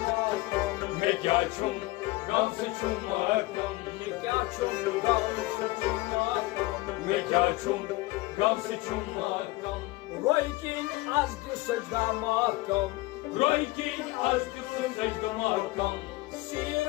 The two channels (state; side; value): quieter; right; 20.9 dB